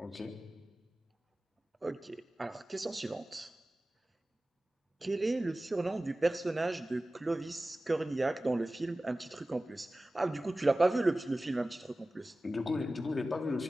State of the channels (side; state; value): both; normal; correlation 0.96